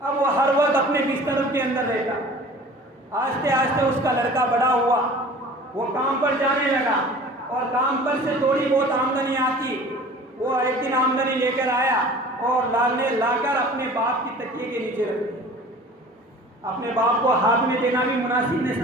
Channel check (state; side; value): normal; both; correlation 0.44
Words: وہ ہر وقت اپنے بستروں کے اندر رہتا، آہستہ آہستہ اس کا لڑکا بڑا ہوا، وہ کام پر جانے لگا اور کام پر سے تھوڑی بہت آمدنی آتی، وہ ایک دن آمدنی لے کر آیا اور لا کر اپنے باپ کی تکیے کے نیچے رکھ دیا۔ اپنے باپ کو ہاتھ میں دینا بھی مناسب نہیں